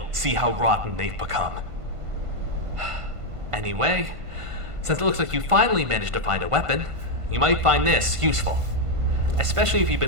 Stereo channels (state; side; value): late; left; 1.5 ms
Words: see how rotten they've become. Anyway, since it looks like you finally managed to find a weapon, you might find this useful. Especially if you've